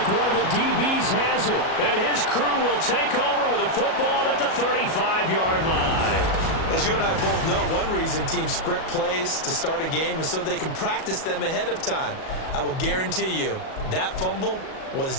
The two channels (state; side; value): late; right; 37 ms